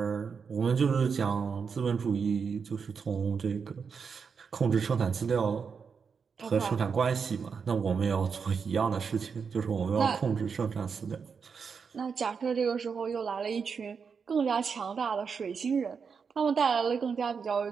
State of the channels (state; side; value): quieter; left; 5.9 dB